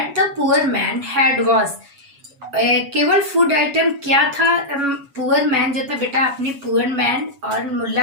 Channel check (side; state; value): left; late; 7.1 ms